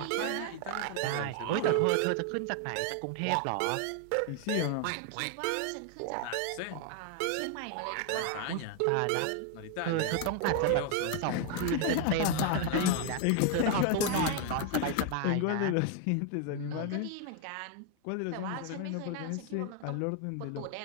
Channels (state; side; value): different; both; correlation 0.01